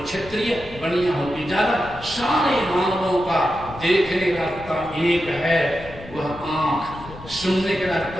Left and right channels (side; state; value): left; noise; rumble, 16 dB below the sound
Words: क्षत्रिय, बनिया हो कि जादव, सारे मानवों का देखने का रास्ता एक है, वह आंख। सुनने का